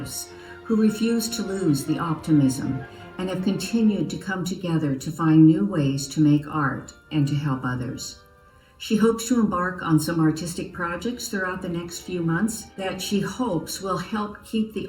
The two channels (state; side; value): identical; both; correlation 1.00